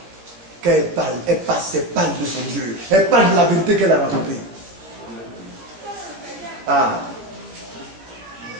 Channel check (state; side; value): late; left; 17 ms